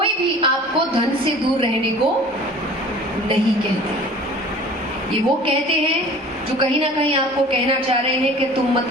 भी आपको धन से दूर रहने को नहीं कहते। ये वो कहते हैं जो कहीं ना कहीं आपको कहना चाह रहे हैं कि तुम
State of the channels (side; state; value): both; normal; correlation 0.44